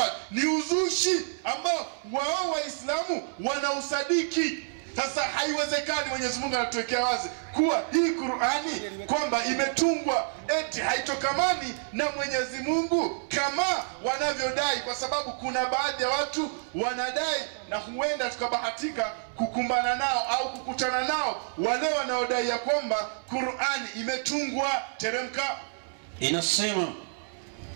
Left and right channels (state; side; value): silent; left; 59 dB below the other